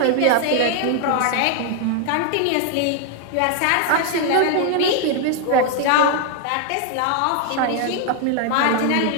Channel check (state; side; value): different; both; correlation 0.00